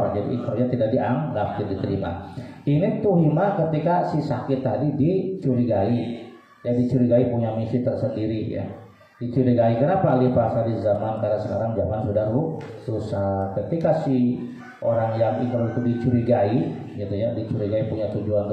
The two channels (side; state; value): both; identical; correlation 1.00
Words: Jadi ikrarnya tidak dianggap, tidak diterima. Ini tuhima ketika si sakit tadi dicurigai. Ya dicurigai punya misi tersendiri ya. Dicurigai kenapa ahli bahasa di zaman, karena sekarang zaman sudah susah. Ketika si orang yang ikrar itu dicurigai gitu ya, dicurigai punya